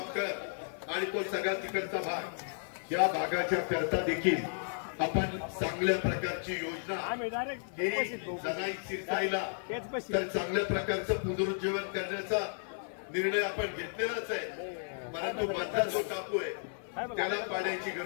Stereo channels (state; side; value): silent; right; 55 dB below the other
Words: आणि तो सगळा तिकडचा भाग, या भागाच्या करता देखील आपण चांगल्या प्रकारची योजना जनाई शिरसाईला तर चांगल्या प्रकारचं पुनरुज्जीवन करण्याचा निर्णय आपण घेतलेलाच आहे, परंतु मधला जो टापू आहे त्याला पाण्याची